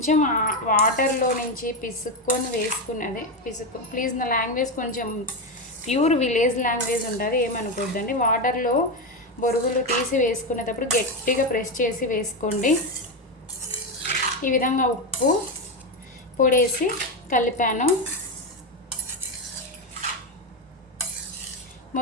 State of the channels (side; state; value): both; normal; correlation 0.12